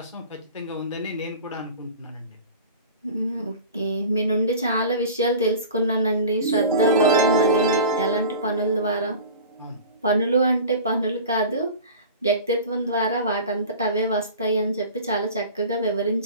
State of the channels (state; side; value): inverted; both; correlation -0.38